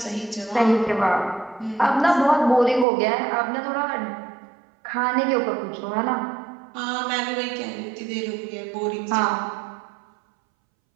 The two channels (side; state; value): left; drops out; at 2.9 s